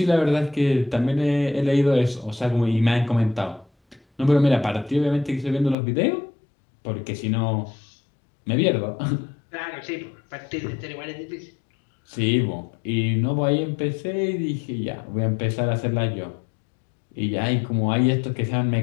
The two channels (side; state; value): right; drops out; at 5.8 s